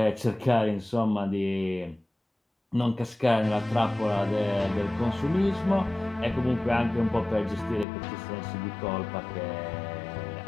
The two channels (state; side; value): drops out; right; at 7.9 s